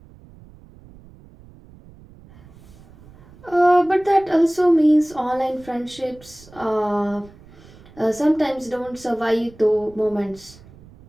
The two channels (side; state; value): right; noise; rumble, 23 dB below the sound